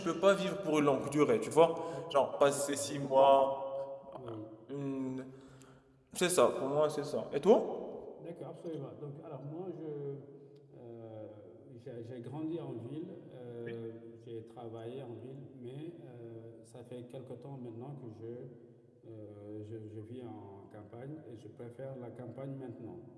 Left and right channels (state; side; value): identical; both; correlation 1.00